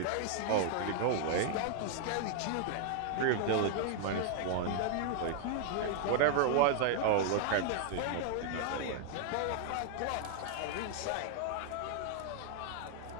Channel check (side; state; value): both; different; correlation 0.00